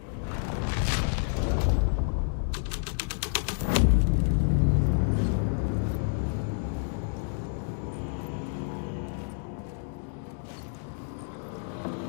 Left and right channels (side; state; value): right; silent; digital silence